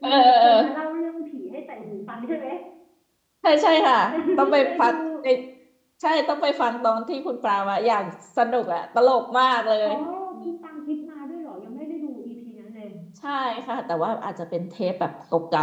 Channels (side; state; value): both; identical; correlation 1.00